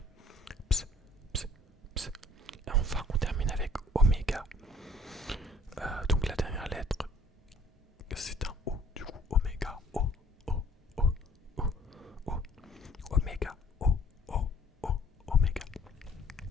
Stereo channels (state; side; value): normal; both; correlation 0.57